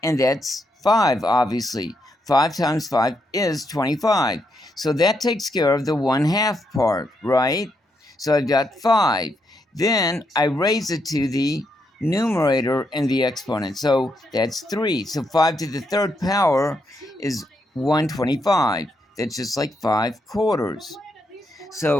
And that's 5, obviously. 5 times 5 is 25. So that takes care of the 1/2 part, right? So I've got 5. Then I raise it to the numerator in the exponent. So that's 3. So 5 to the 3rd power is 125. That's just like 5/4.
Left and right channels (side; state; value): both; normal; correlation 0.79